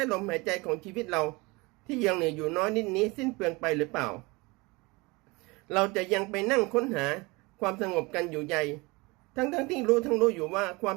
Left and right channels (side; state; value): left; quieter; 24.9 dB